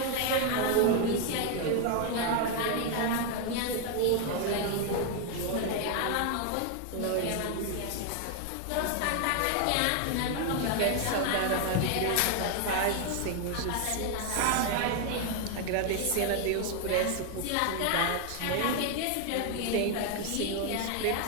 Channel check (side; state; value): both; different; correlation 0.01